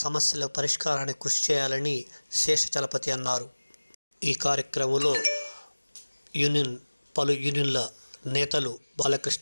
సమస్యల పరిష్కారానికి కృషి చేయాలని శేషచలపతి అన్నారు. ఈ కార్యక్రమంలో పలు యూనియన్ల నేతలు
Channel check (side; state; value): both; inverted; correlation -1.00